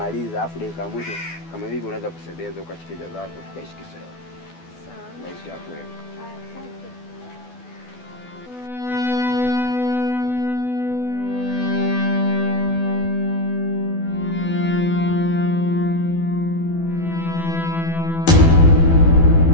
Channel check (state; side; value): late; right; 12 ms